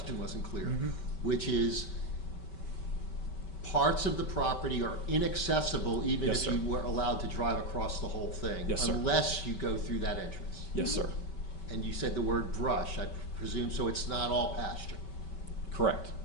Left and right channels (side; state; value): right; late; 5.2 ms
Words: wasn't clear, which is parts of the property are inaccessible even Yes, if sir. you were allowed to drive across the whole thing, Yes, sir. unless you go through that entrance. Yes, sir. And you said the word brush, I presume, so it's not all pasture. Correct.